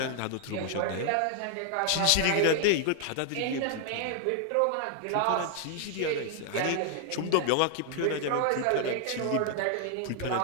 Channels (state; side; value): different; both; correlation 0.00